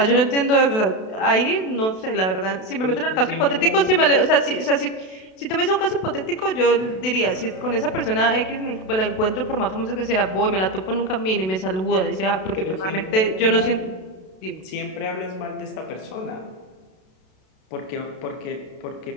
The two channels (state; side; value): late; right; 32 ms